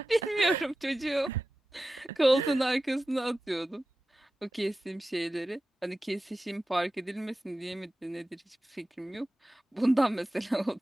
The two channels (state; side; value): normal; both; correlation 0.94